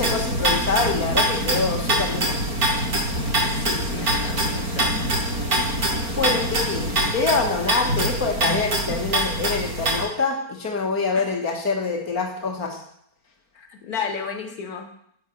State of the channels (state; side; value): late; left; 4.4 ms